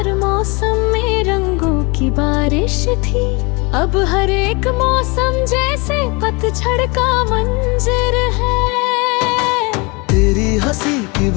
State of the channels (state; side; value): quieter; right; 28.4 dB